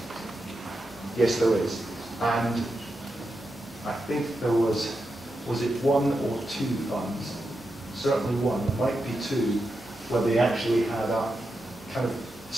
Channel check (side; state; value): both; normal; correlation 0.87